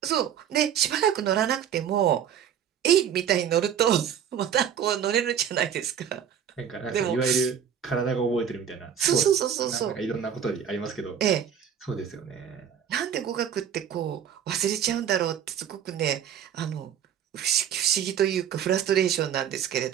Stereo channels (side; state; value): left; quieter; 8.7 dB